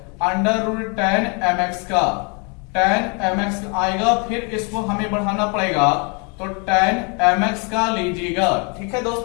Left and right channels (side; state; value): right; quieter; 34.0 dB